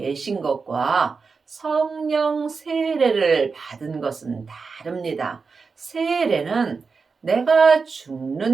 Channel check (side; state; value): left; quieter; 4.8 dB